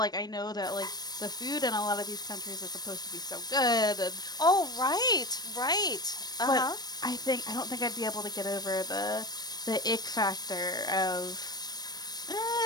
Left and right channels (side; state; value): right; late; 0.19 ms